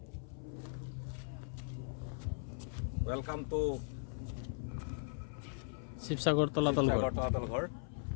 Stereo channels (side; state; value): right; silent; 52 dB below the other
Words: Welcome to Sivasagar তলাতল ঘৰ